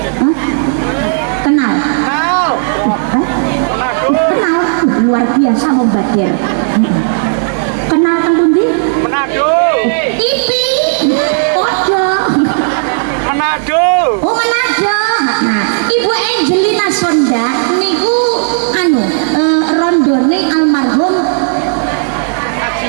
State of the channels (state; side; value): silent; left; digital silence